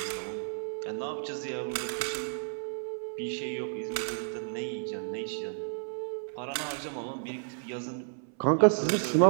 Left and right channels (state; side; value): silent; left; 57 dB below the other